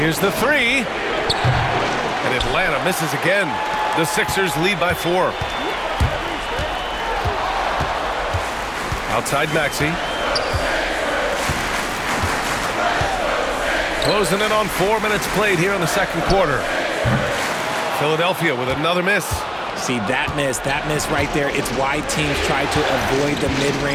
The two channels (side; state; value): both; identical; correlation 1.00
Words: the 3. And Atlanta misses again. The Sixers lead by 4. Outside Maxey. Closing in on 4 minutes played here in the second quarter. Philadelphia with another miss. See, that miss right there, it's why teams try to avoid the